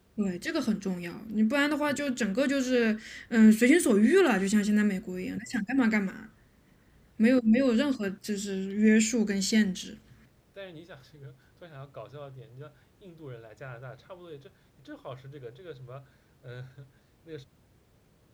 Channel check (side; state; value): both; identical; correlation 1.00